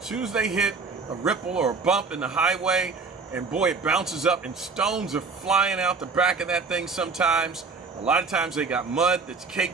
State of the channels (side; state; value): left; quieter; 4.6 dB